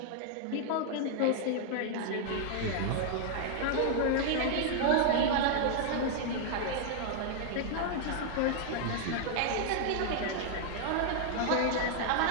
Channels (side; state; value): both; different; correlation 0.00